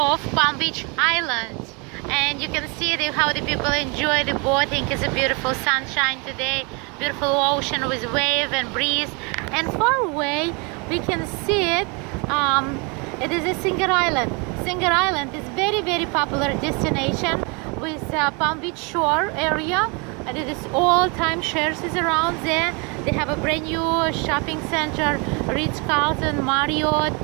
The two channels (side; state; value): left; quieter; 31.3 dB